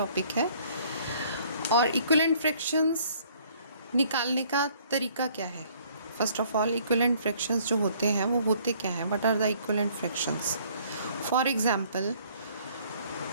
है। और इक्विवेलेंट फ्रैक्शंस निकालने का तरीका क्या है? First of all, equivalent fractions जो होते हैं वो होते क्या हैं? What are the equivalent fractions? For example,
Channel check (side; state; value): both; inverted; correlation -0.59